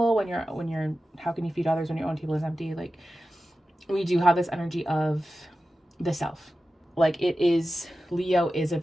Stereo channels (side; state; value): both; normal; correlation 0.93